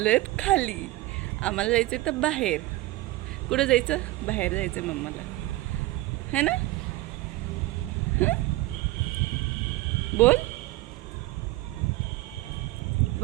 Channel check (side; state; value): left; quieter; 18.3 dB